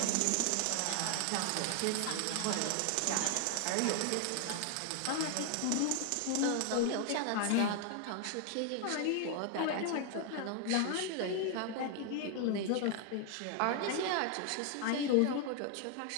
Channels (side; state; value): both; different; correlation 0.00